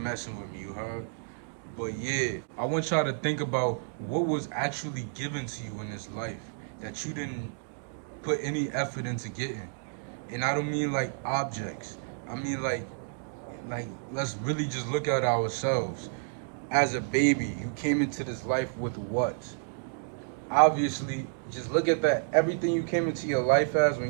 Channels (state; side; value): silent; left; digital silence